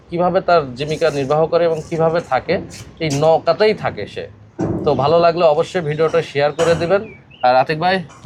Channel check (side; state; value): both; identical; correlation 1.00